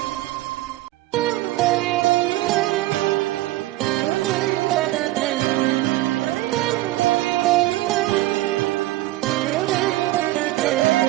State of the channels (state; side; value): quieter; left; 17.2 dB